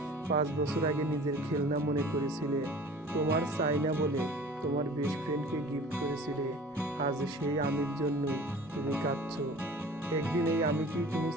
5 বছর আগে নিজের খেলনা মনে করেছিলে, তোমার চাই না বলে তোমার বেস্ট ফ্রেন্ডকে গিফট করেছিলে, আজ সেই আমির জন্যই তুমি কাঁদছো। একদিন এই আমি কি তুমি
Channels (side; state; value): both; normal; correlation 0.44